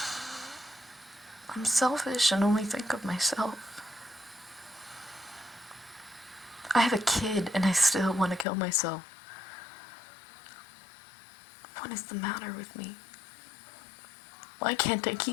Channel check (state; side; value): drops out; right; at 8.5 s